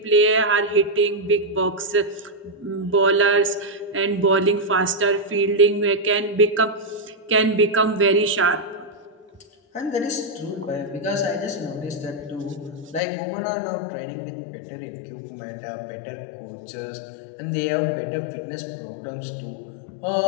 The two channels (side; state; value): right; drops out; at 13.0 s